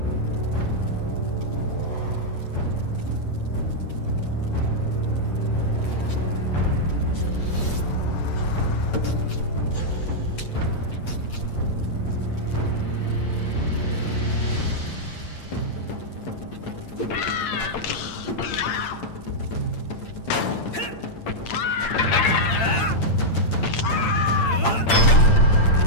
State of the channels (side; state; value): right; late; 8.8 ms